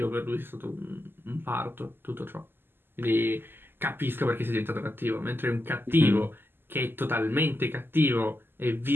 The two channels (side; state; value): left; late; 0.10 ms